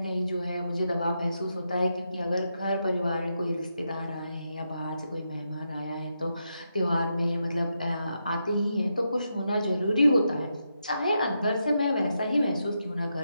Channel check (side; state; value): both; inverted; correlation -0.84